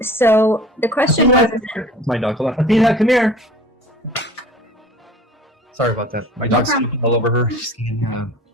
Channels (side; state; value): both; normal; correlation 0.44